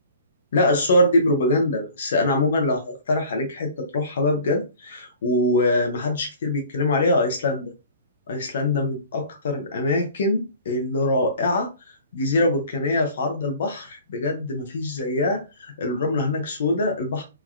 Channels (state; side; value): inverted; both; correlation -0.47